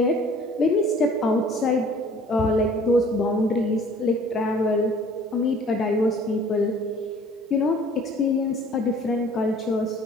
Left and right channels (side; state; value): both; normal; correlation 0.52